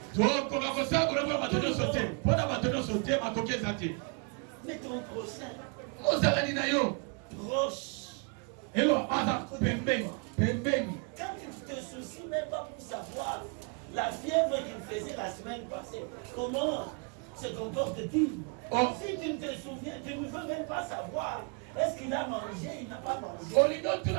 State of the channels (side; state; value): left; quieter; 35.5 dB